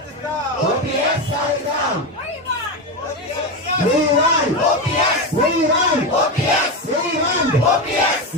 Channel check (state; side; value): normal; both; correlation 0.15